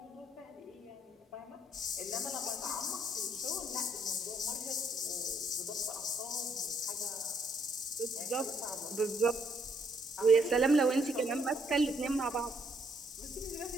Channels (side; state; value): both; normal; correlation 0.70